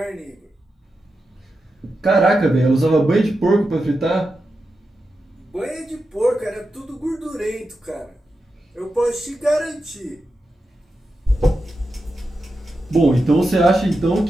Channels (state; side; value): normal; both; correlation 0.89